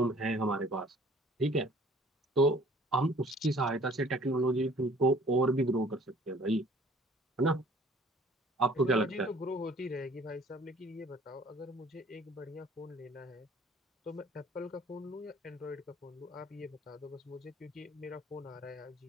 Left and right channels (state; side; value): normal; both; correlation 0.54